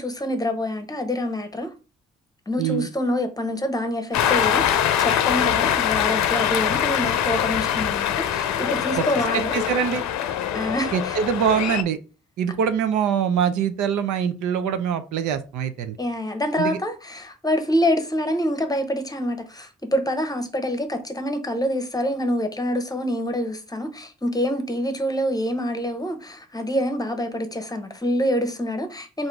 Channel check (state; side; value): normal; both; correlation 0.41